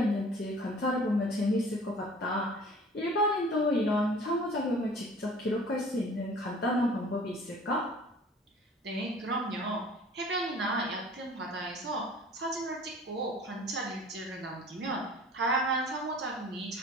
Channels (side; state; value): both; normal; correlation 0.47